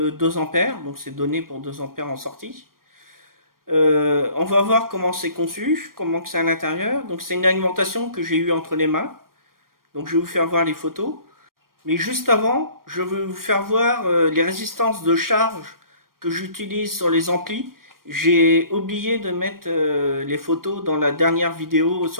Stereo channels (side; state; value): left; late; 0.92 ms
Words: ampères, donc c'est donné pour 2 ampères en sortie. On va voir comment c'est conçu, comment c'est à l'intérieur. Donc c'est une alimentation que j'ai eue entre les mains. Donc je vais vous faire voir les photos. Mais juste avant, je vais vous faire voir les résistances de charge que j'utilise sur les amplis. J'ai oublié de mettre les photos dans la dernière vidéo